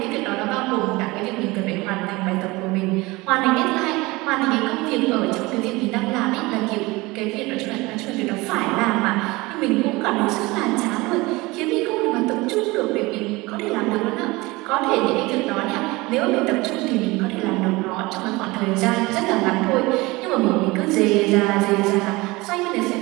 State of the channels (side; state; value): left; quieter; 22.3 dB